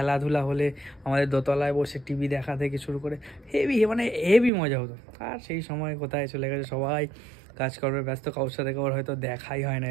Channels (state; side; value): drops out; left; at 4.5 s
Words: হলে আমাদের দোতলায় বসে টিভি দেখা থেকে শুরু করে হেভি, মানে হেভি মজা হতো। আর সেই সময় কোথায় চলে গেছে, সবাই কাজকর্মে ব্যস্ত, কারোর সাথে কারোর হয়তো দেখাই হয় না,